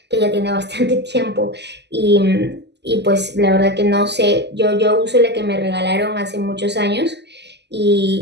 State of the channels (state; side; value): late; left; 0.50 ms